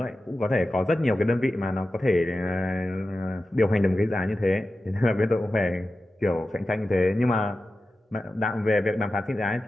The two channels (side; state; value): both; normal; correlation 0.93